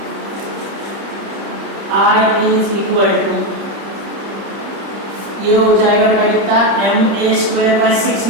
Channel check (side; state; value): left; late; 30 ms